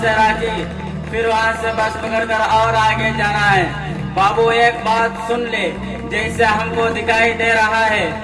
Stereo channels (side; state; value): both; identical; correlation 1.00